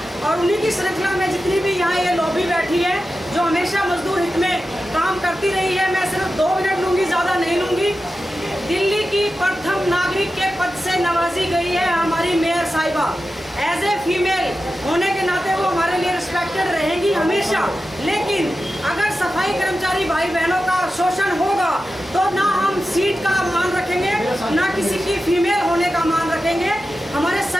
और उन्हीं की श्रृंखला में जितनी भी यहाँ ये लॉबी बैठी है जो हमेशा मजदूर हित में काम करती रही है। मैं सिर्फ 2 मिनट लूँगी, ज़्यादा नहीं लूँगी। दिल्ली की प्रथम नागरिक के पद से नवाजी गई है हमारी मेयर साहिबा। एज ए फीमेल होने के नाते वो हमारे लिए रिस्पेक्टेड रहेंगी हमेशा, लेकिन अगर सफाई कर्मचारी भाई बहनों का शोषण होगा तो ना हम सीट का मान रखेंगे, ना किसी की फीमेल होने का मान रखेंगे। हमारे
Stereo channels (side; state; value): both; normal; correlation 0.92